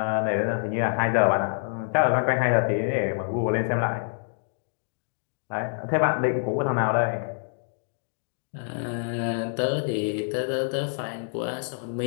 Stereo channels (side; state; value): right; silent; digital silence